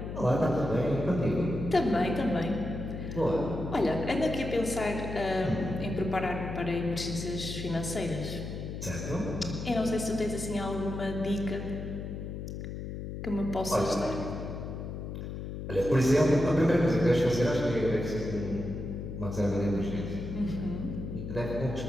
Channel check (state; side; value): noise; left; hum, 7 dB below the sound